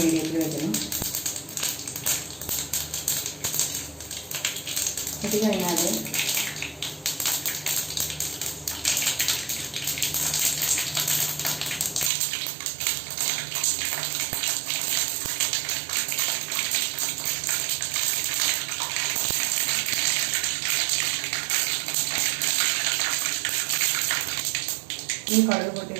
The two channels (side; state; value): left; drops out; at 12.1 s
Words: വെക്കണം. ഇത് കഴിഞ്ഞാൽ ഈ കടുക് പൊട്ടി